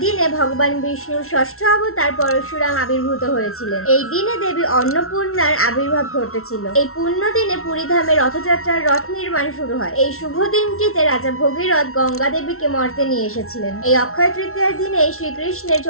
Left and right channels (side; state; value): right; late; 0.62 ms